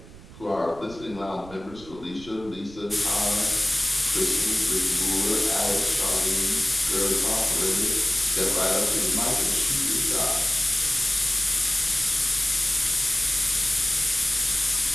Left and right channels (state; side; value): noise; right; rumble, 19 dB below the sound